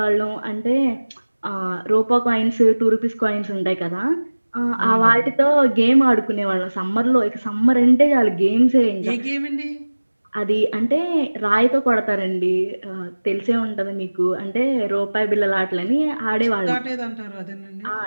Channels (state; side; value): inverted; both; correlation -1.00